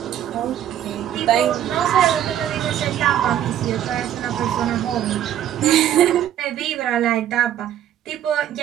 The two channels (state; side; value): quieter; left; 11.0 dB